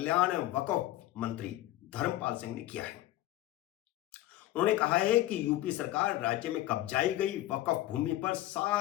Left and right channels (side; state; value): right; quieter; 15.2 dB